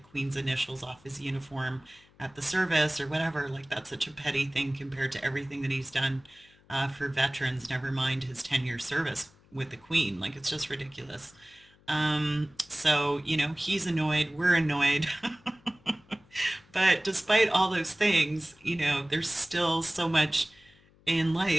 initials off his uniform at the service or whatever, like that's such a petty thing compared to everything that he's done for veterans, never mind his 10-year service with the queen. Like it's just ridiculous. So, he's annoyed, we're annoyed. But despite all those things, there's still so much in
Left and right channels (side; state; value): left; noise; hum, 29 dB below the sound